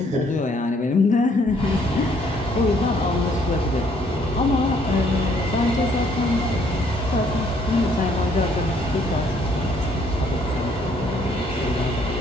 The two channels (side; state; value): both; normal; correlation 0.65